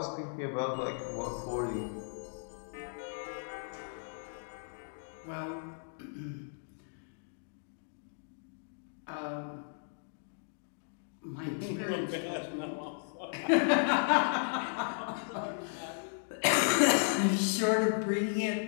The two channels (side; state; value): right; silent; digital silence